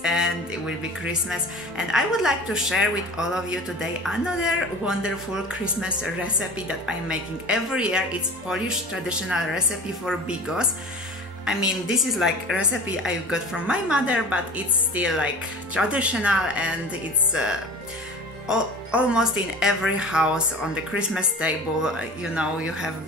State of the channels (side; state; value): both; normal; correlation 0.38